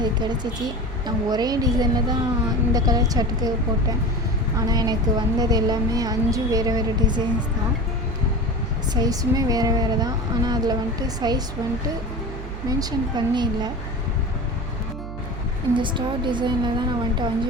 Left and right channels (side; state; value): right; noise; hum, 9 dB below the sound